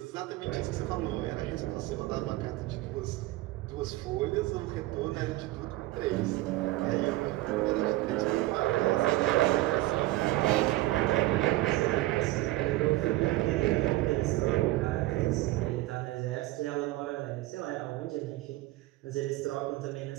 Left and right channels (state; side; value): quieter; left; 18.0 dB